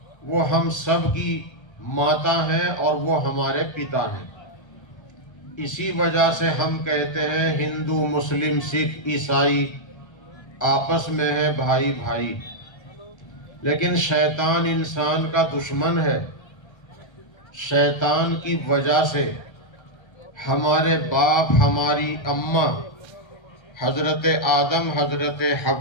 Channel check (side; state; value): right; late; 1.3 ms